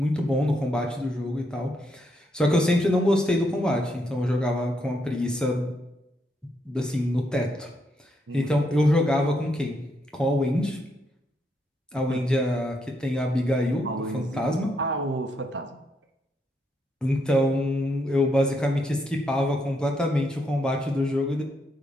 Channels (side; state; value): both; normal; correlation 0.78